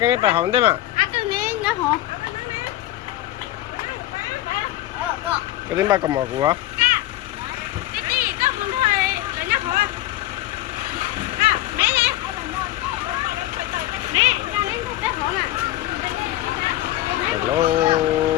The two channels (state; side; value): quieter; right; 15.5 dB